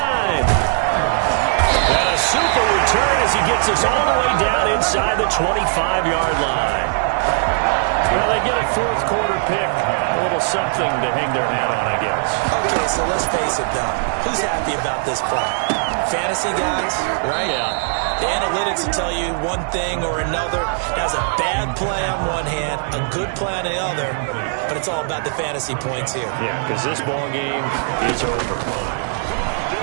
And a super return as he gets us all the way down inside the 25-yard line. Well, they get a fourth quarter pick. A little something to hang their hat on, I guess. Okay, so let's face it, though. Who's happy about this play? Fantasy guys, right? Yeah. The analytics will tell you one thing or another. Has a bad play on one hand, a good play on the other, but it's all about the fantasy points here. Yeah, because this ball game is over.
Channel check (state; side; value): silent; left; 62 dB below the other